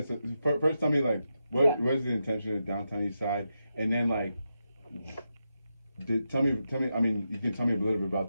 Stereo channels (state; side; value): inverted; both; correlation -0.87